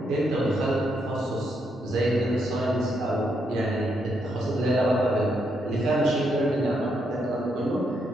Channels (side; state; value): both; normal; correlation 0.78